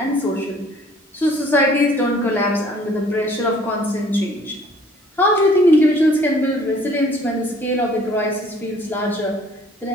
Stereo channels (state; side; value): normal; both; correlation 0.56